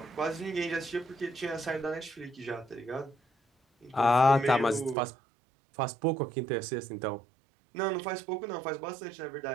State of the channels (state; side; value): drops out; left; at 5.0 s